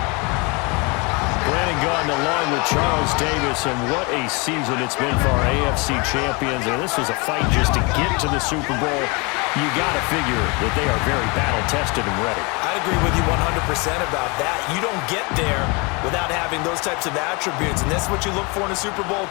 Brandon Gaudin along with Charles Davis, and what a season it's been for our AFC champions. And this was a fight just to get to the Super Bowl. You got to figure that they are very battle-tested and ready. I'd agree with you 100% about that. You don't get there without having those types of attributes, and that's what you look for in a Super Bowl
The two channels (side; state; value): right; quieter; 29.1 dB